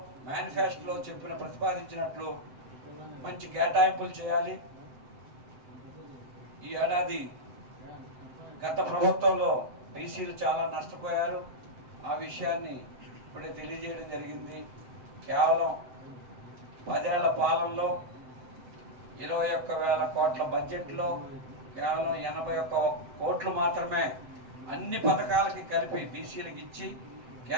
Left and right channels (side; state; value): left; late; 7.8 ms